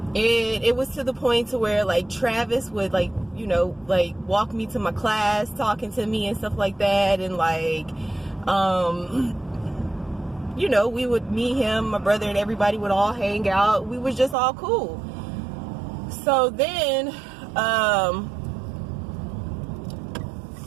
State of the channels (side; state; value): left; drops out; at 14.4 s